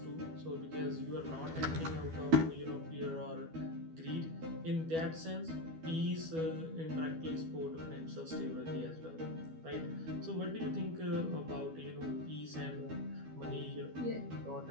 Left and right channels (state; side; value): late; left; 12 ms